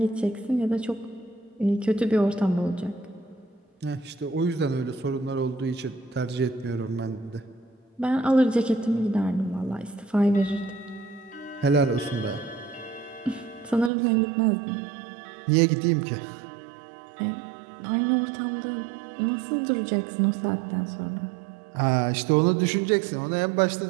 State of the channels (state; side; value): drops out; left; at 13.9 s